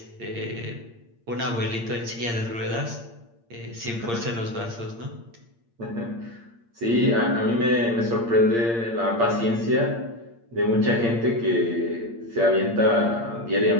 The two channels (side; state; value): left; late; 8.7 ms